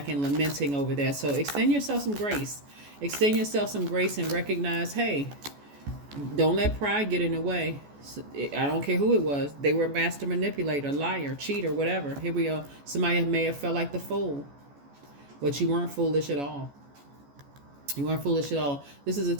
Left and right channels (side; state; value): left; late; 14 ms